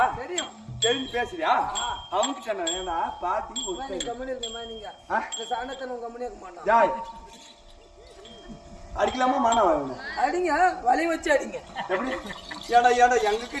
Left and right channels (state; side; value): identical; both; correlation 1.00